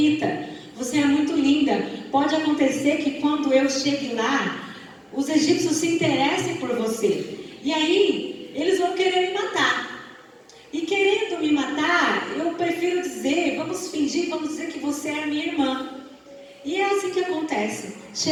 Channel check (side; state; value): both; identical; correlation 1.00